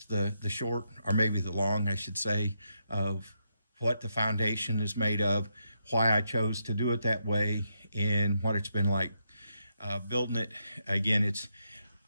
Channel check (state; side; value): inverted; both; correlation -0.81